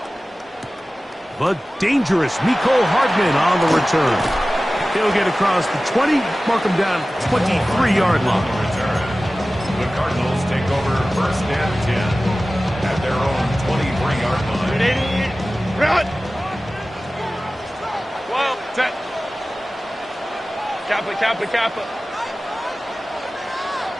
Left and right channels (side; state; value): both; normal; correlation 0.96